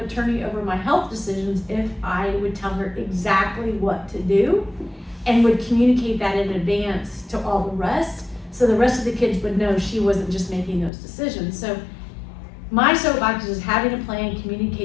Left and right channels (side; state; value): right; drops out; at 10.9 s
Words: attorney over my health decisions if I would tell her exactly what to do and would communicate that in advance to all the rest. So the rest of the kids would know she wasn't just making those decisions. So my soapbox is having a plan,